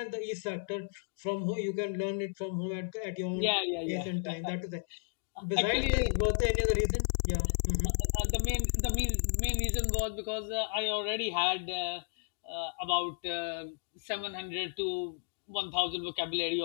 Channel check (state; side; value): silent; right; digital silence